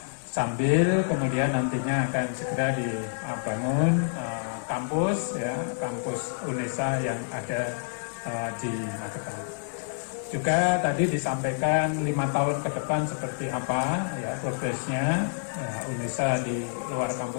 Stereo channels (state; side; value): silent; right; digital silence